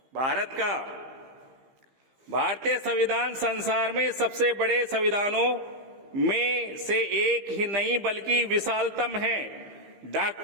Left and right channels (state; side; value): late; left; 15 ms